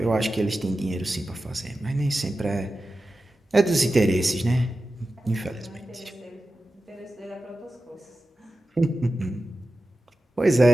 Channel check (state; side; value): normal; both; correlation 0.93